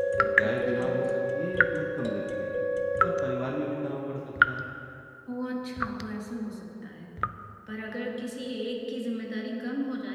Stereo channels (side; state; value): both; identical; correlation 1.00